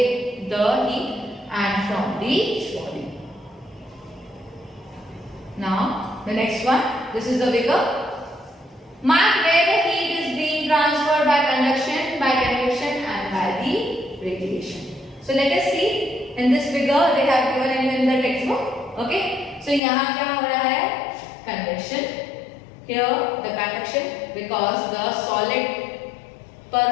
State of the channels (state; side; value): drops out; right; at 19.8 s